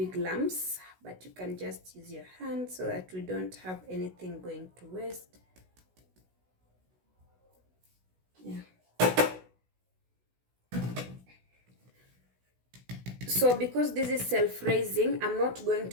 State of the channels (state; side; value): late; left; 16 ms